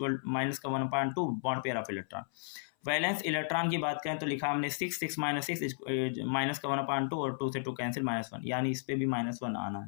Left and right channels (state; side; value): silent; right; 55 dB below the other